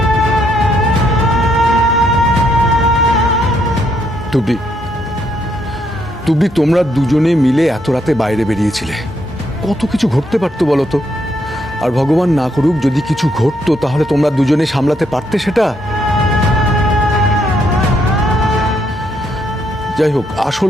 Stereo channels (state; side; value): normal; both; correlation 0.74